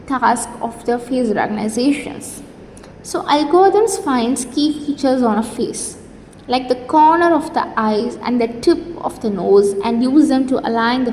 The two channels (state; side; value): identical; both; correlation 1.00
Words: task of the face recognitions. So algorithms finds key features on a face, like the corner of the eyes and the tip of the nose, and use them to align the